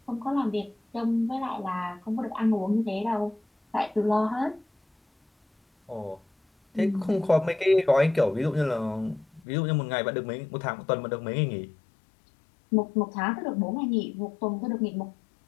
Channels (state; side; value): drops out; right; at 9.4 s